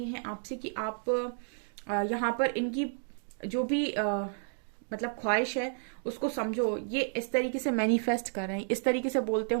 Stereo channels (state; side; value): silent; left; digital silence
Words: हैं आपसे कि आप यहाँ पर इनकी जो भी मतलब ख्वाहिश है उसको समझो। ये इस तरीके से मैनिफेस्ट कर रहे हैं, इस तरीके से बोलते